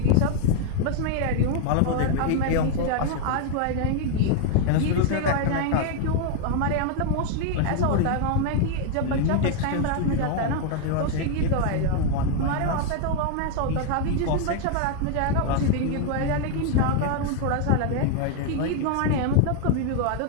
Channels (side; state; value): both; different; correlation 0.00